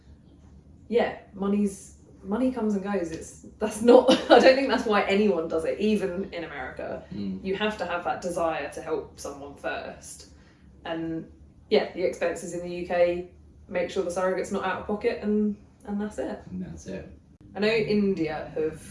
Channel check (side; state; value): both; identical; correlation 1.00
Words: yeah, money comes and goes. That's not, I don't think that's why anyone does it, even in America. You have to have that desire to help someone first. And yeah, the expenses in the UK, make sure the surrogate's not out of pocket, and that's it. And that's it. I know India have